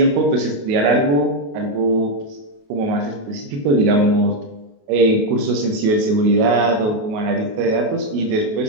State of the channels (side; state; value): left; late; 28 ms